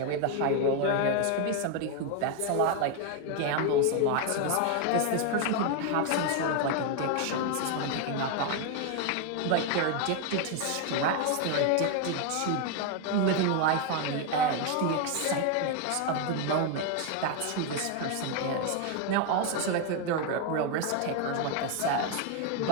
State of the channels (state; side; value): different; both; correlation 0.01